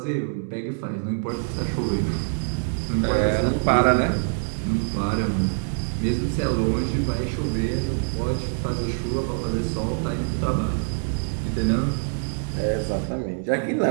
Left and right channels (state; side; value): silent; left; 62 dB below the other